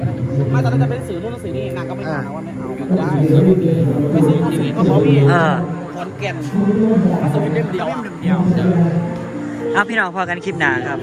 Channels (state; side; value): identical; both; correlation 1.00